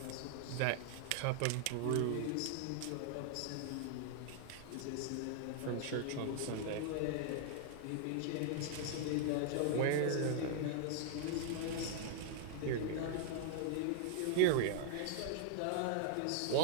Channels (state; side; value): different; both; correlation 0.00